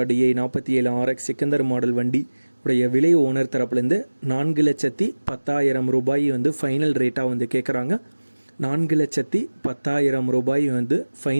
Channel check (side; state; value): both; inverted; correlation -1.00